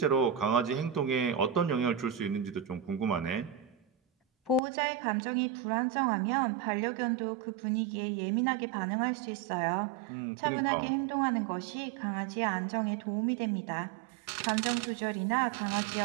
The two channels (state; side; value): drops out; left; at 4.6 s